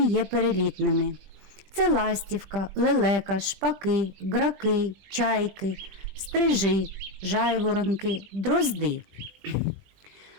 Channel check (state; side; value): late; left; 20 ms